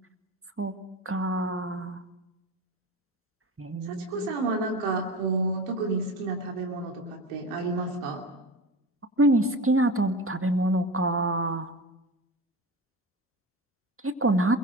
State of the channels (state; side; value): normal; both; correlation 0.29